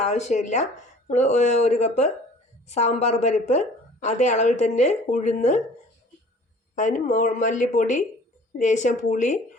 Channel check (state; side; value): normal; both; correlation 0.49